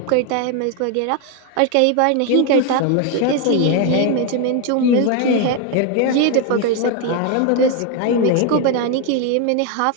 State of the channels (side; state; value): both; different; correlation 0.01